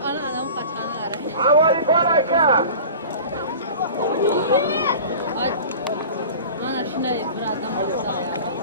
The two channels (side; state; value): both; inverted; correlation -0.38